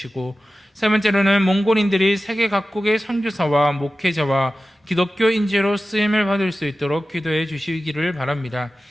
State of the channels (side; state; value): both; normal; correlation 0.95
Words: 세 번째로는 몽골인들이 세계 각국의 선교사와 목회자와 기독교 인재로 쓰임을 받을 수 있도록 기도해 주시기를 바랍니다.